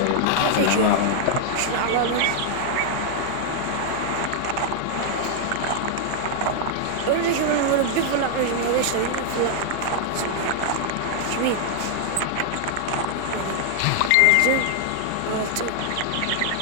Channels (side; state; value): both; different; correlation 0.00